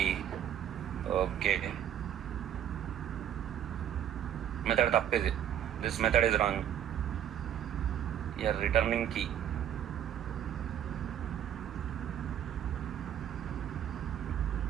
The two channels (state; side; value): quieter; left; 10.1 dB